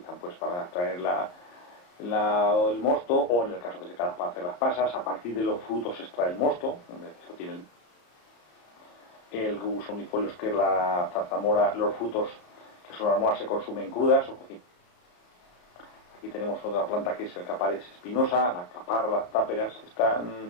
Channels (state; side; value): late; right; 34 ms